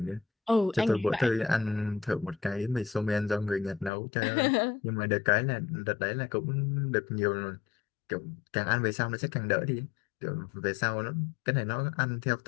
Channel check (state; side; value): drops out; right; at 3.9 s